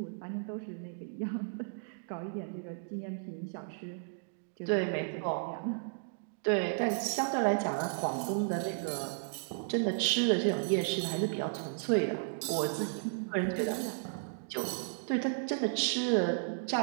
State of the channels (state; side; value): silent; left; digital silence